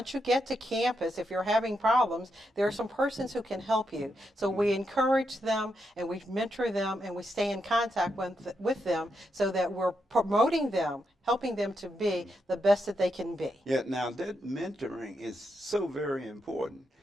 you get to campus, if you're having problems, there are some persons who can help you. So we encourage them and we mentor them and we stay in contact with them so that we're promoting them, helping them to be the best that they can be. Yeah, now that mentoring is so very important.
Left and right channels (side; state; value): both; normal; correlation 0.83